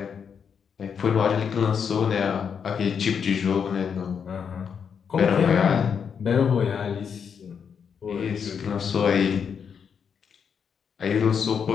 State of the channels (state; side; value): quieter; right; 6.9 dB